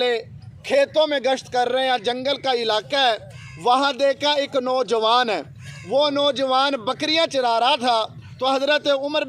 کھیتوں میں گشت کر رہے ہیں، جنگل کا علاقہ ہے۔ وہاں دیکھا ایک نوجوان ہے، وہ نوجوان بکریاں چرا رہا تھا۔ تو حضرت عمر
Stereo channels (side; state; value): both; identical; correlation 1.00